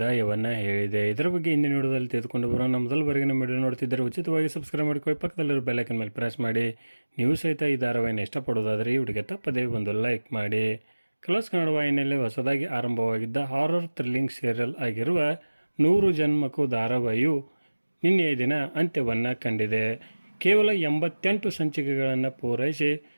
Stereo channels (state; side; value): inverted; both; correlation -1.00